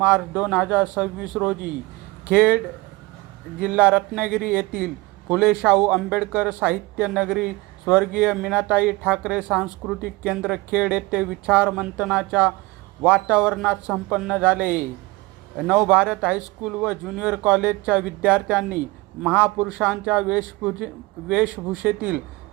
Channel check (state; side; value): quieter; left; 22.0 dB